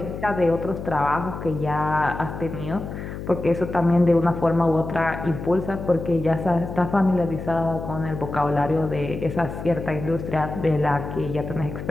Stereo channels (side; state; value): left; noise; hum, 8 dB below the sound